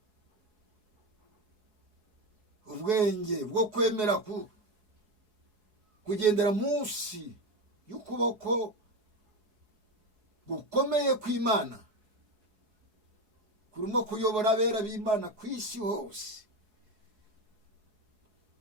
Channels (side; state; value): left; late; 4.7 ms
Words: ubwenge bwo kwemera kugendera munsi y'ukuboko gukomeye kw'Imana kurimo kuyobora abera b'Imana ku isi hose.